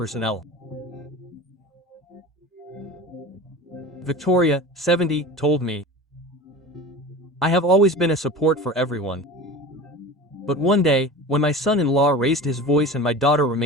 Victoria, 70, told me, I have always been a support for everyone. But one day, when my son-in-law raised his voice and my daughter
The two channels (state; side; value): normal; both; correlation 0.34